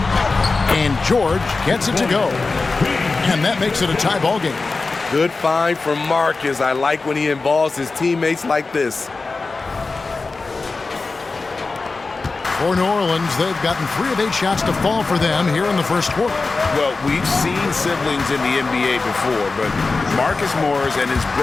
And George gets it to go. And that makes it a tie ball game. Good find from Marcus. I like when he involves his teammates like this. For New Orleans, they've gotten 3 of 8 shots to fall for them here in the first quarter. Well, we've seen siblings in the NBA before, but Marcus Morris and his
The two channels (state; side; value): quieter; right; 3.9 dB